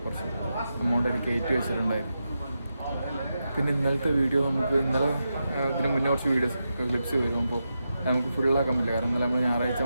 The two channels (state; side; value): inverted; both; correlation -0.88